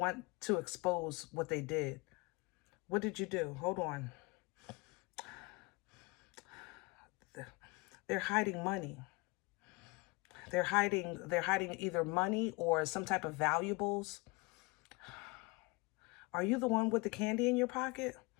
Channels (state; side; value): quieter; right; 26.6 dB